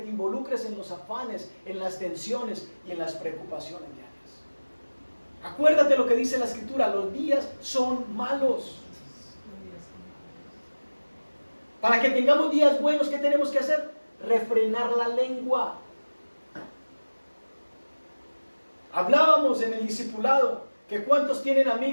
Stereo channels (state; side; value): inverted; both; correlation -1.00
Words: involucres en los afanes, en las tensiones y en las preocupaciones diarias. Acuérdate lo que dice la Escritura, los días son malos. Para que tengamos días buenos, ¿qué tenemos que hacer? Refrenar la lengua. Hablábamos en el discipulado que cuántos tienen